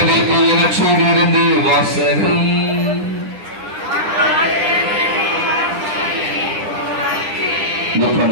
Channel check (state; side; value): late; left; 9.9 ms